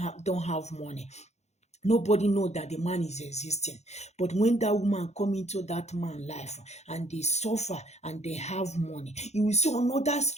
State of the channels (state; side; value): late; right; 0.32 ms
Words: have money, nobody know that the man is existing. But when that woman come into that man's life and they suffer and they have money, you will see another